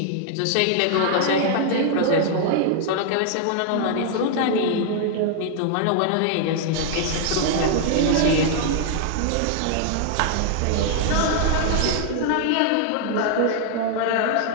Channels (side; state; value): both; different; correlation 0.00